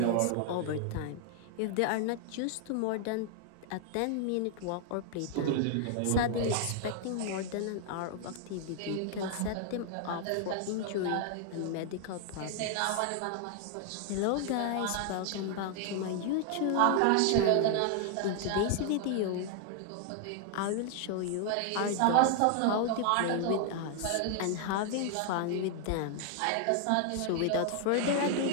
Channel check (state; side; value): different; both; correlation 0.00